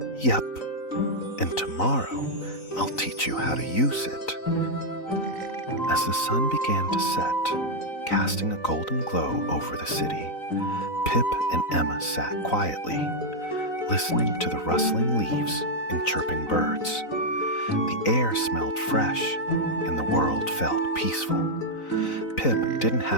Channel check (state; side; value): late; right; 3.9 ms